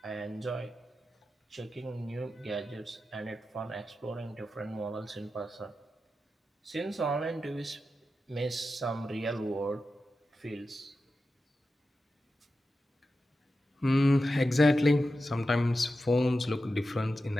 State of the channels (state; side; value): normal; both; correlation 0.91